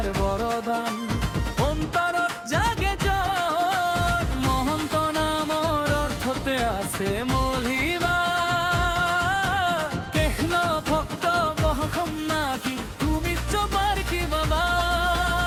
বৰদান অন্তৰত জাগে জ্বৰ মহন্ত নামৰ অৰ্থতে আছে মলিবা কৃষ্ণ ভক্ত বহসম নাকি তুমি চপাৰ কি বাবা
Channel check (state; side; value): identical; both; correlation 1.00